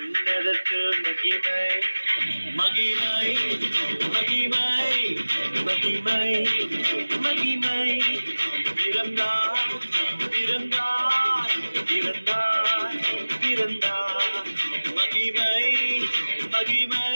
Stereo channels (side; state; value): both; inverted; correlation -1.00